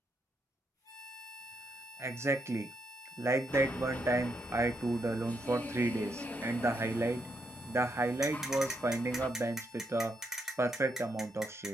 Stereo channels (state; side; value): normal; both; correlation 0.79